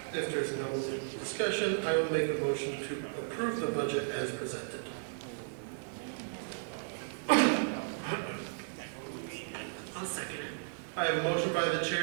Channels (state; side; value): silent; left; digital silence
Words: If there's no discussion, I will make a motion to approve the budget as presented. I'll second it. I have a motion by the